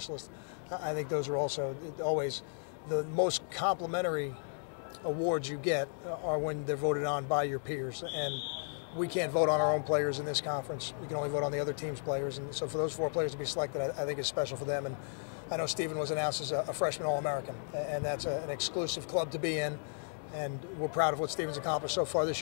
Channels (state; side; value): silent; right; digital silence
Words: I think those are also always the most complimentary awards you get are when they're voted on by your peers. And we can't vote on our own players in this conference. We can only vote on the other team's players. And so for those four players to be selected, I think is special for them. And I know Stephen was announced as a freshman All-American, and that's an exclusive club to be in. And we're proud of what Stephen's accomplished so far this